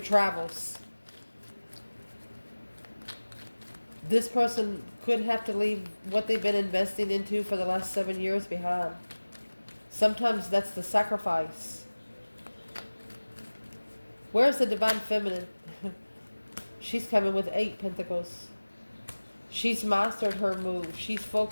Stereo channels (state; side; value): inverted; both; correlation -1.00